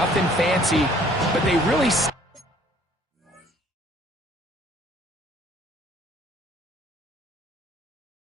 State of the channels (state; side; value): normal; both; correlation 0.58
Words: fancy, but they really...